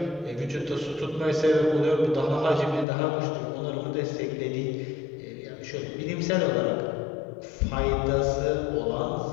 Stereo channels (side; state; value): right; drops out; at 2.9 s